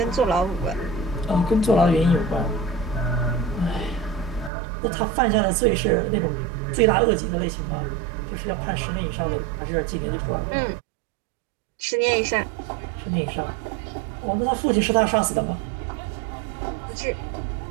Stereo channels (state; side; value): drops out; left; at 4.5 s